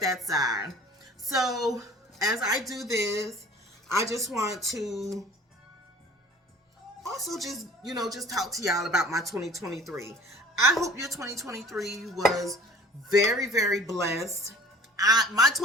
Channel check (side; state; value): both; normal; correlation 0.48